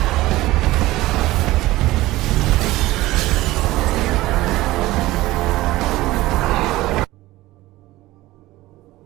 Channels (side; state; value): left; quieter; 17.8 dB